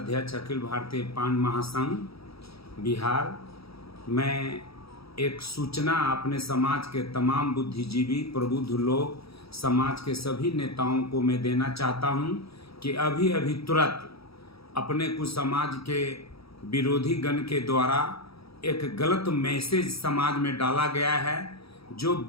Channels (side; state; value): right; late; 0.77 ms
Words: अखिल भारतीय पान महासंघ बिहार। मैं एक सूचना अपने समाज के तमाम बुद्धिजीवी प्रबुद्ध लोग, समाज के सभी नेताओं को मैं देना चाहता हूं कि अभी अभी तुरंत अपने कुछ समाज के विरोधी गण के द्वारा एक गलत मैसेज समाज में डाला गया है जो